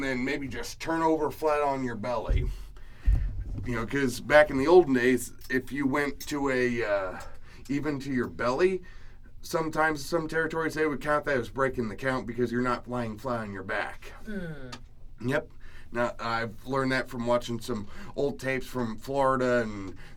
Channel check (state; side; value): identical; both; correlation 1.00